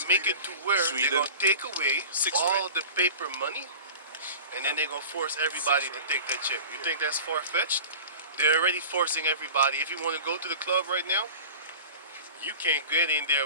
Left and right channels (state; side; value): inverted; both; correlation -0.37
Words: make it to where Sweden. they're gonna take away all the paper money, and then they're gonna force everybody to take that chip. You think that's far-fetched? They're already forcing everybody. If you want to go to the club right now, you can't get in there